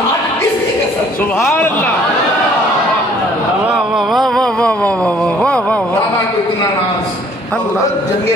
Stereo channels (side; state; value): both; normal; correlation 0.58